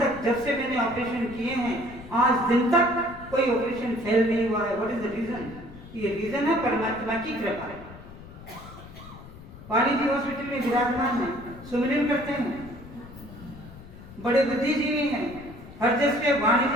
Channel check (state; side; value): noise; left; rumble, 17 dB below the sound